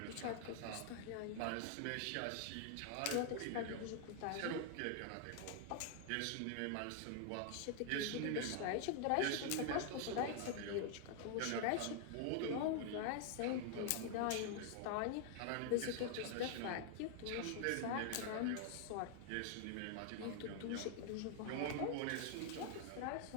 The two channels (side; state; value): both; different; correlation 0.00